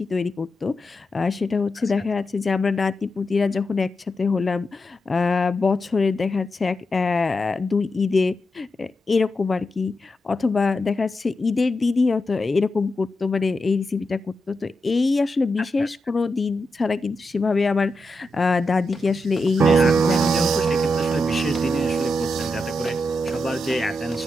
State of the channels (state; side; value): normal; both; correlation 0.87